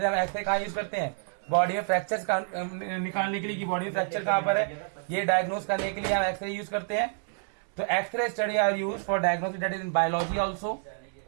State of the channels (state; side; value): silent; left; 59 dB below the other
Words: हम x ray कहाँ use करते हैं, body में fractures निकालने के लिए कि बॉडी में फ्रैक्चर कहाँ पर है, ये डायग्नोस करने के लिए हम एक्सरे यूज करते हैं. तो X-ray study are use for diagnosis, that is in biology also.